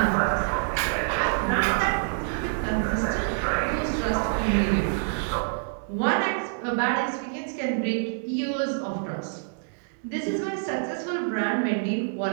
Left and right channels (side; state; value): left; silent; 61 dB below the other